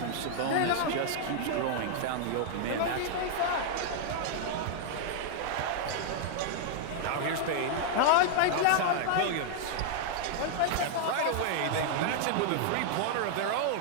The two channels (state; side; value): different; both; correlation -0.01